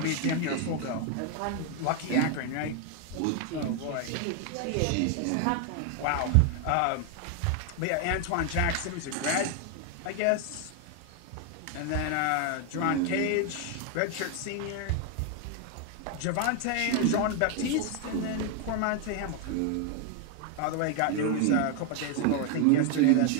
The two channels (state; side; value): different; both; correlation 0.01